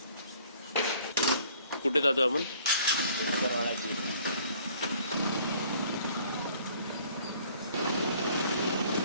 कुठे जातो आपण?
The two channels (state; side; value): inverted; both; correlation -0.57